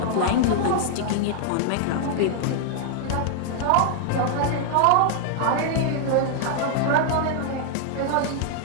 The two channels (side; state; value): both; different; correlation 0.00